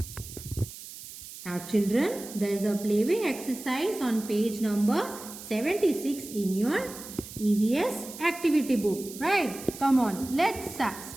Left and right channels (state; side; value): noise; right; hiss, 14 dB below the sound